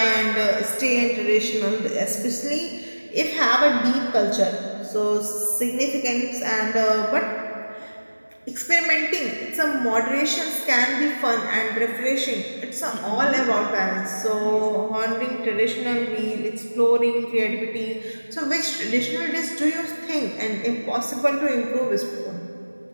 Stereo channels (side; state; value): both; inverted; correlation -1.00